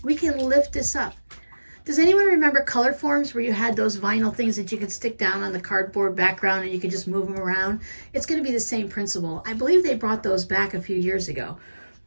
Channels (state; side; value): inverted; both; correlation -1.00